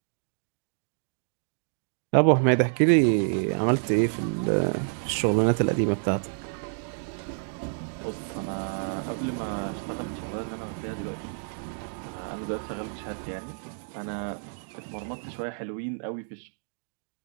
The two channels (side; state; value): left; silent; digital silence